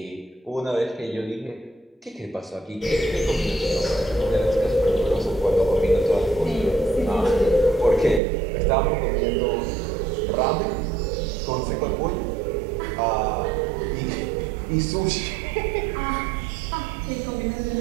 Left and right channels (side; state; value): left; drops out; at 8.2 s